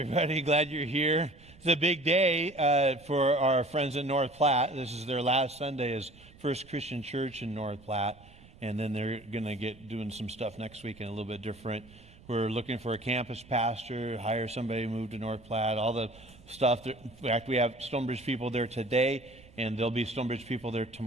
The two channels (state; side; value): noise; right; rumble, 23 dB below the sound